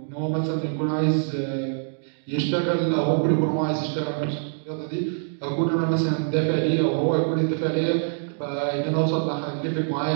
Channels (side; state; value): left; silent; digital silence